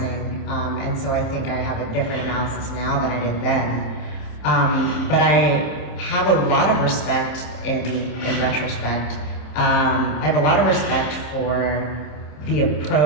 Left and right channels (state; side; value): late; right; 26 ms